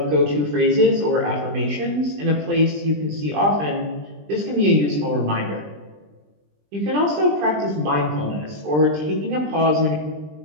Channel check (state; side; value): late; left; 20 ms